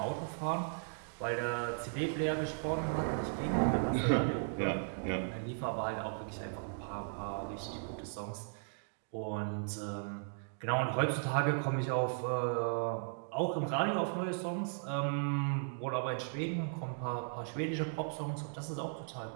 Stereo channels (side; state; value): left; silent; digital silence